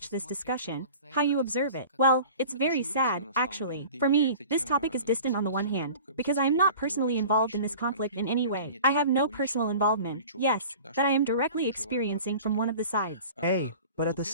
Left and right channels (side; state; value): both; inverted; correlation -0.41